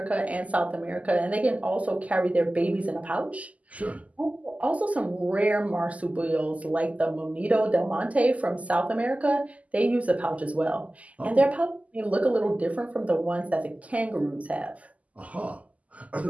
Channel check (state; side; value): late; left; 0.072 ms